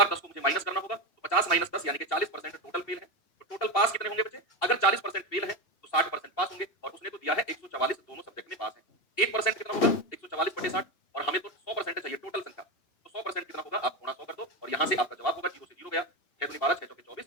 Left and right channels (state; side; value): late; right; 2.7 ms